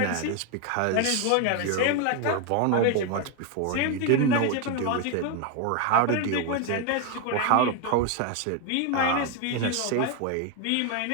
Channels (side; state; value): both; different; correlation 0.01